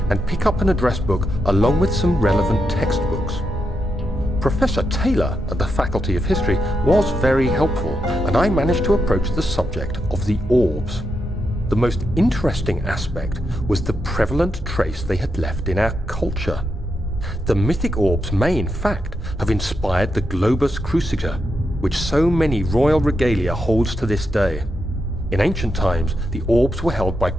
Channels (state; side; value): normal; both; correlation 0.84